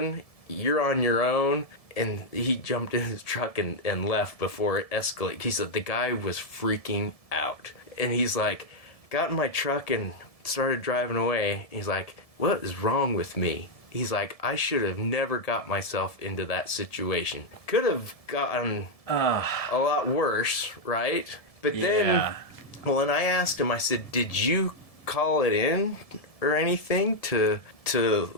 You're on your own. And he jumped in his truck and left before it escalated. He said the guy was freaking out. And he's like, got in my truck and started driving away. He's like, what is wrong with me? He's like, I should have never got myself into that situation. Could have gotten a lot worse, right? But then, and I asked him, I said, did you call it in or anything to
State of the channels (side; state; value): right; late; 1.7 ms